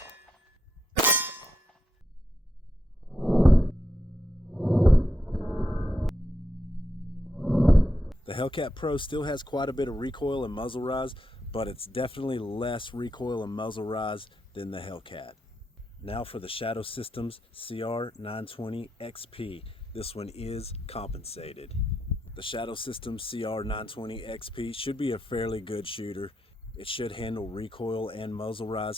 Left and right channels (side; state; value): both; normal; correlation 0.83